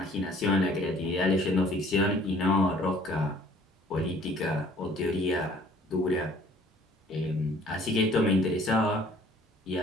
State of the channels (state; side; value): normal; both; correlation 0.55